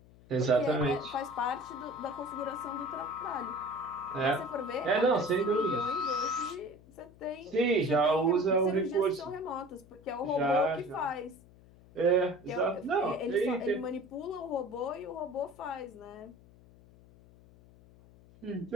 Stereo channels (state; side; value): noise; left; hum, 24 dB below the sound